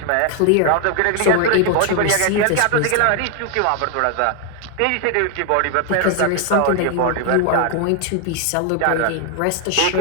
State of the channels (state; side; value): different; both; correlation 0.01